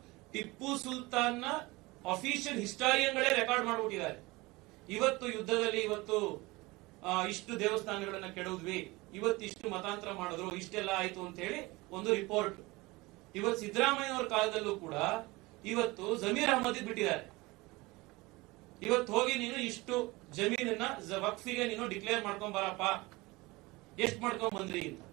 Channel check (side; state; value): left; quieter; 22.4 dB